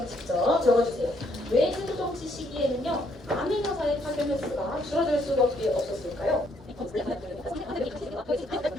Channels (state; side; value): normal; both; correlation 0.70